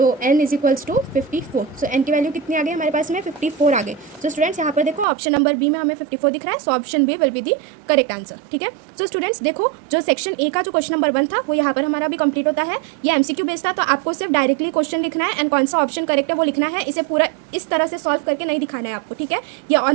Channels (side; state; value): left; drops out; at 5.1 s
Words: n is equals to 54। So n की वैल्यू कितनी आ गई हमारे पास में 54 आ गई। सो स्टूडेंट्स यहाँ पर देखो ऑप्शन नंबर बी में हमें 54 दिख रहा है, so option B will be the correct answer, ठीक है। सो स्टूडेंट्स देखो जो सेक्शन ए का जो क्वेश्चन नंबर 1 था वो यहाँ पर हमारा भी कंप्लीट होता है। ये एमसीक्यू बेस्ड था, तो आपको सिर्फ डायरेक्टली क्वेश्चन लिखना है एंड कौन सा ऑप्शन करेक्ट है वो लिखना है, इसे पूरा इस तरह से सॉल्व करके नहीं दिखाना है आपको, ठीक है। ये